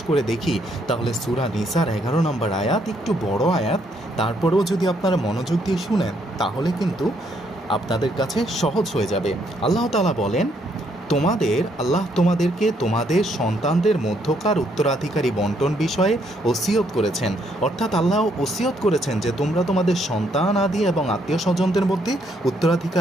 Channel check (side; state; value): both; normal; correlation 0.71